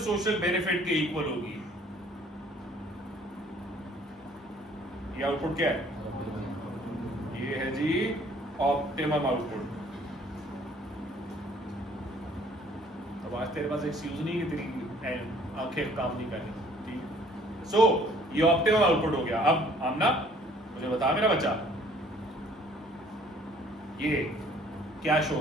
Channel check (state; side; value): normal; both; correlation 0.57